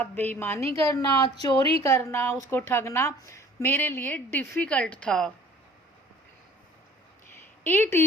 बेईमानी करना, चोरी करना, उसको ठगना मेरे लिए डिफ़िकल्ट था। It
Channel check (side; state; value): both; normal; correlation 0.51